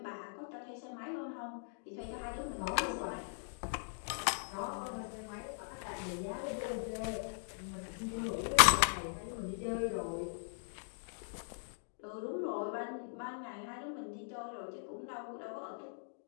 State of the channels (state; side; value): silent; right; digital silence